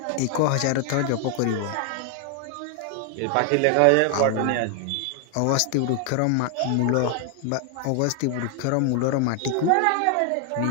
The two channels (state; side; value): different; both; correlation 0.00